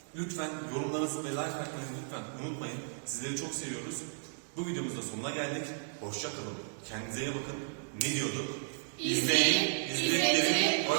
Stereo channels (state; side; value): silent; left; 55 dB below the other